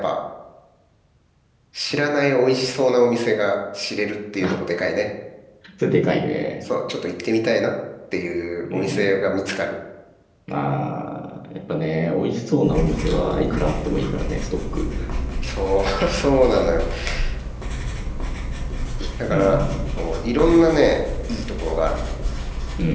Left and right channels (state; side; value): identical; both; correlation 1.00